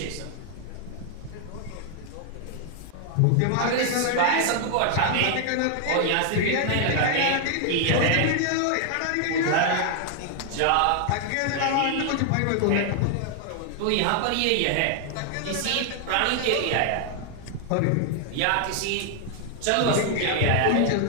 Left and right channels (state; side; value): different; both; correlation 0.00